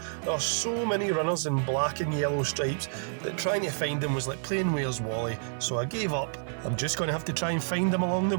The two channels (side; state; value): left; silent; digital silence